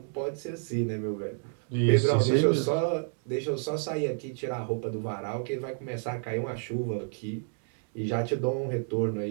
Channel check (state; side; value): silent; left; 58 dB below the other